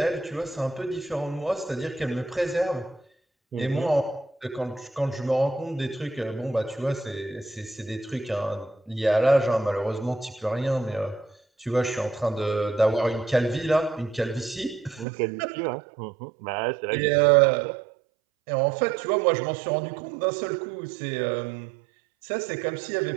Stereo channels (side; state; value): left; drops out; at 15.1 s